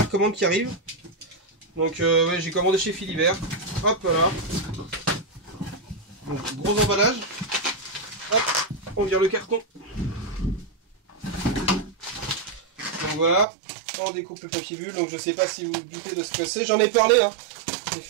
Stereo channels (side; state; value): left; drops out; at 13.5 s